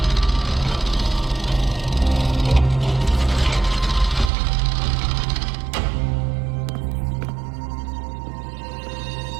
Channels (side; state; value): left; drops out; at 4.3 s